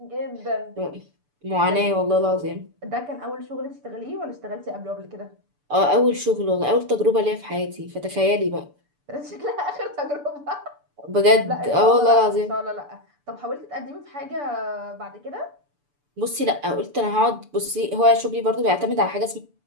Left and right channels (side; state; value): left; late; 6.9 ms